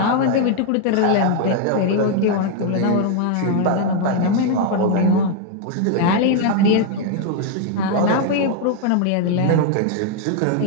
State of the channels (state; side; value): different; both; correlation 0.00